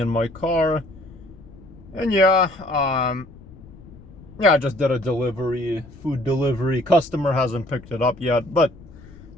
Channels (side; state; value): left; noise; rumble, 20 dB below the sound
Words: my car. And I just did a food delivery. Customer hasn't picked it up yet, but